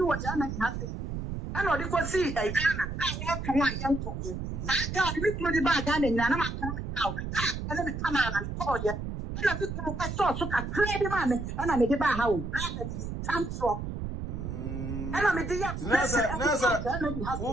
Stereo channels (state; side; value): noise; right; rumble, 5 dB below the sound